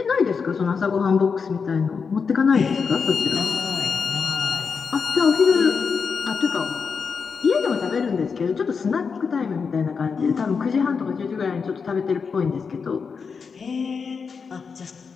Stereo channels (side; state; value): right; quieter; 5.6 dB